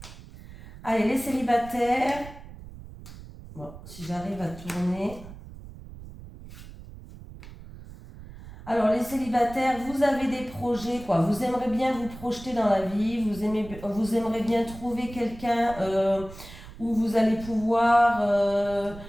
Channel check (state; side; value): noise; right; rumble, 16 dB below the sound